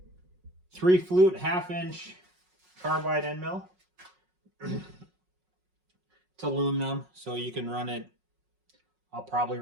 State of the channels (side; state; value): left; late; 5.5 ms